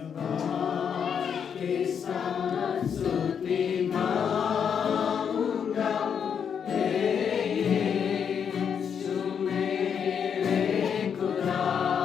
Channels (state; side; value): quieter; right; 7.4 dB